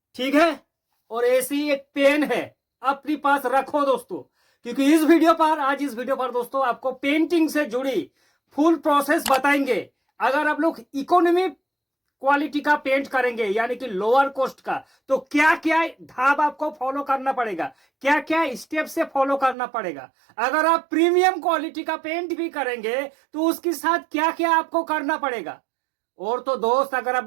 ठीक है, और ऐसी एक पेन है, अपने पास रखो दोस्तों, क्योंकि आज इस वीडियो पर दोस्तों आपको पेंटिंग से जुड़ी फुल प्रोसेस बताएंगे। अगर आप लोग इकोनॉमी क्वालिटी का पेंट करेंगे यानी कि लोअर कॉस्ट का, तो क्या क्या धाप आपको फॉलो करना पड़ेगा, क्या क्या स्टेप से फॉलो करना पड़ेगा। अगर आप प्रीमियम क्वालिटी का पेंट भी करेंगे तो उसके साथ क्या क्या आपको करना पड़ेगा। और तो दोस्त अगर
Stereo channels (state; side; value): drops out; left; at 19.6 s